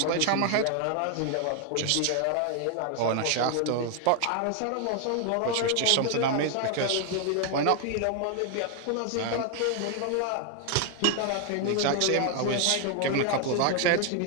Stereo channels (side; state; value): both; different; correlation 0.00